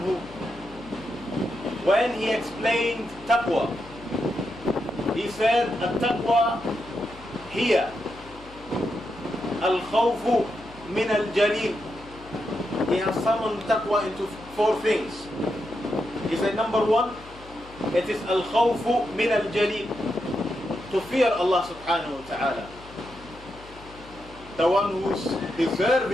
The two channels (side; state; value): left; noise; hum, 20 dB below the sound